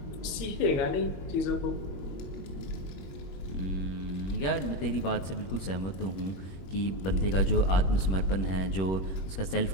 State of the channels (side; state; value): right; late; 21 ms